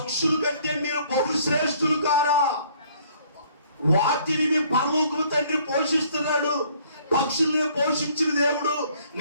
కంటే మీరు బహుశ్రేష్ఠులు కారా? వాటిని మీ పరలోకపు తండ్రి పోషిస్తున్నాడు. పక్షుల్ని పోషించిన దేవుడు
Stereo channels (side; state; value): both; inverted; correlation -0.60